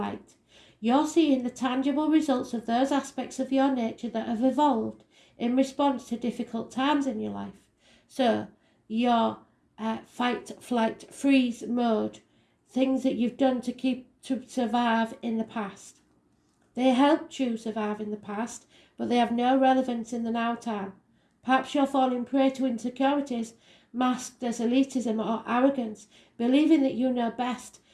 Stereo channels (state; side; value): identical; both; correlation 1.00